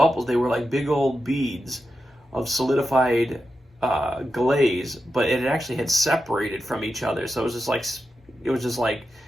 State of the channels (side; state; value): both; normal; correlation 0.89